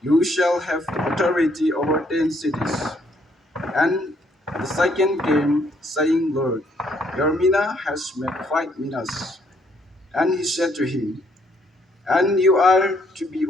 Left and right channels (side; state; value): both; normal; correlation 0.69